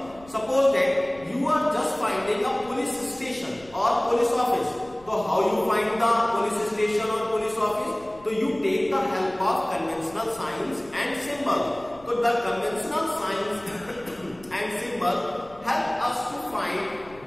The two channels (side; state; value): left; noise; rumble, 24 dB below the sound